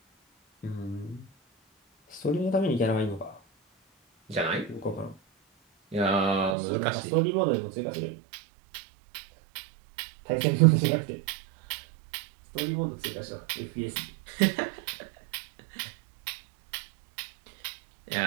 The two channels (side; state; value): left; drops out; at 6.6 s